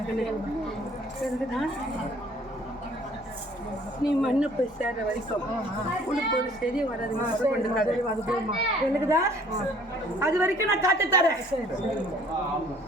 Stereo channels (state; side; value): normal; both; correlation 0.56